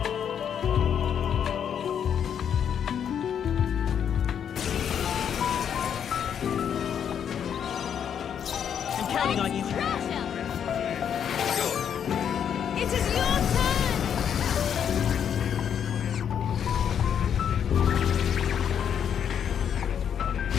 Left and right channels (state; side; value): quieter; right; 8.4 dB